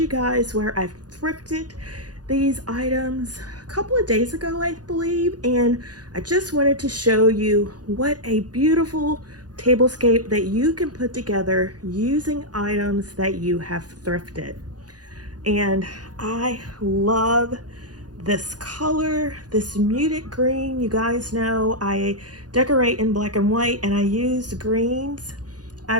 guys where I've thrifted these items a couple of days ago, I believe, and I just wanted to show you what a beautiful tablescape that you can put together using items that you have thrifted. And I love this color, this muted green. You guys know I decorate in black and white, and I use greens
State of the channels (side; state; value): left; late; 0.69 ms